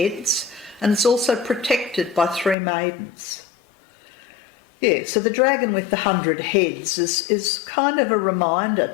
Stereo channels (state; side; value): drops out; right; at 2.6 s